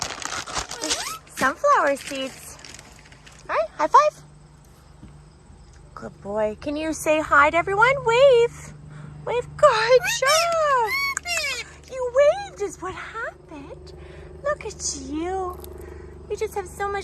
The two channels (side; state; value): both; identical; correlation 1.00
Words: Sunflower seeds. All right, high five. Good boy. Can you say hi to everyone? Wave. Wave. Good job. You waved is what happened. Look at you. You just have so